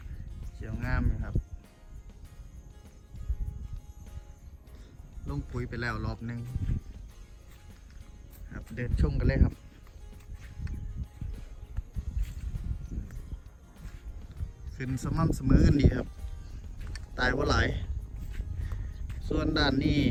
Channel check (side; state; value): both; identical; correlation 1.00